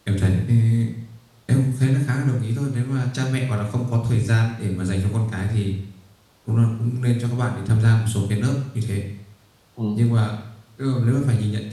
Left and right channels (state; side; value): identical; both; correlation 1.00